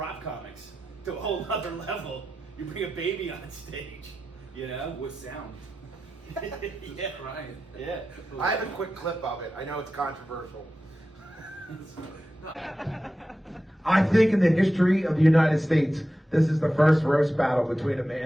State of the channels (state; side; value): normal; both; correlation 0.92